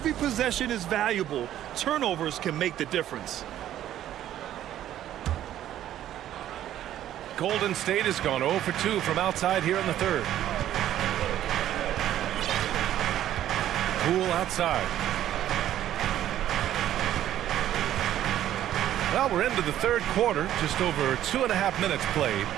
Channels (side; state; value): left; quieter; 12.1 dB